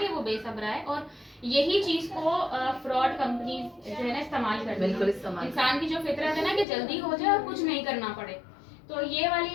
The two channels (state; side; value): drops out; right; at 6.7 s